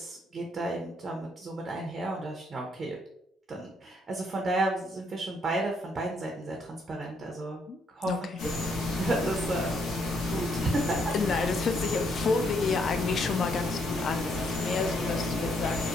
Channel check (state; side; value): normal; both; correlation 0.72